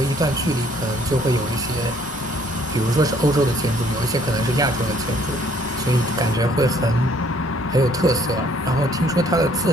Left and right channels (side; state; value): both; normal; correlation 0.62